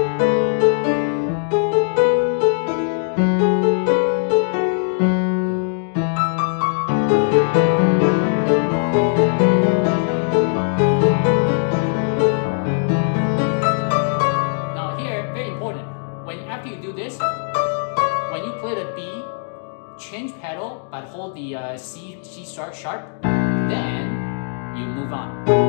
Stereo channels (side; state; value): right; silent; digital silence